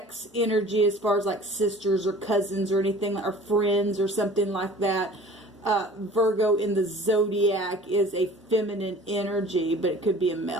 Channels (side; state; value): both; normal; correlation 0.46